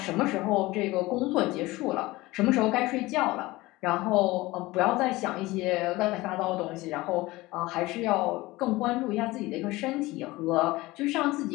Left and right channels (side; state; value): right; quieter; 19.9 dB